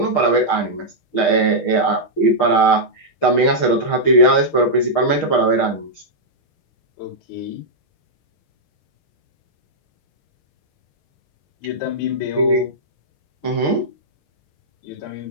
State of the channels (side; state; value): right; late; 6.5 ms